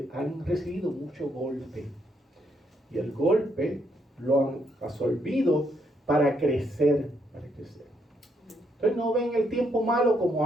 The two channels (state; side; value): normal; both; correlation 0.75